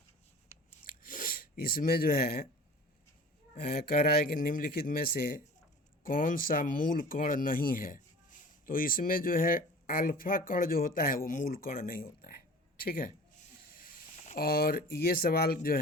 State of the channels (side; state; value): both; normal; correlation 0.42